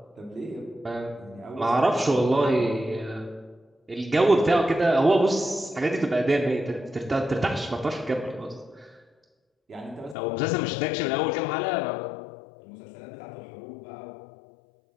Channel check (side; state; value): right; drops out; at 10.2 s